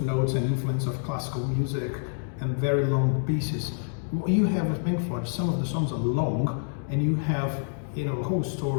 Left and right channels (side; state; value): right; silent; digital silence